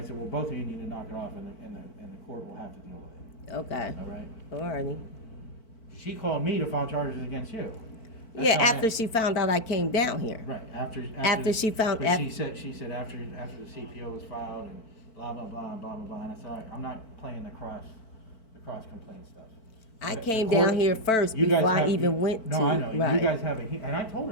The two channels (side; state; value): right; late; 4.5 ms